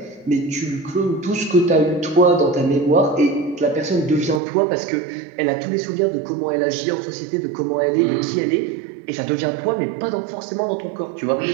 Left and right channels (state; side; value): drops out; left; at 4.4 s